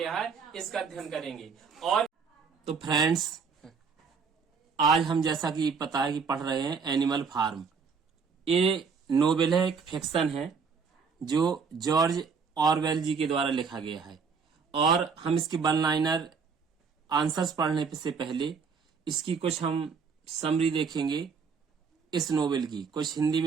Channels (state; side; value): quieter; left; 5.5 dB